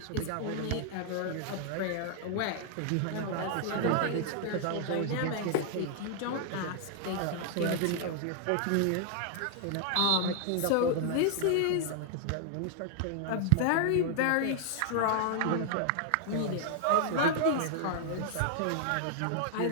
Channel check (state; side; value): different; both; correlation 0.00